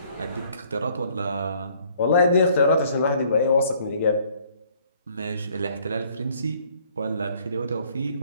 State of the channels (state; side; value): inverted; both; correlation -0.61